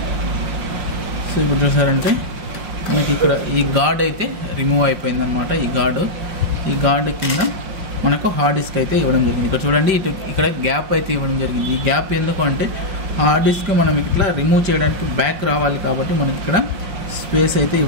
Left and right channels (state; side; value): late; left; 5.6 ms